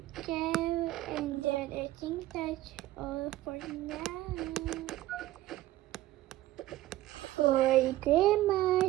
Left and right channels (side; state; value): left; quieter; 15.7 dB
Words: go, and then I think that's all for now. For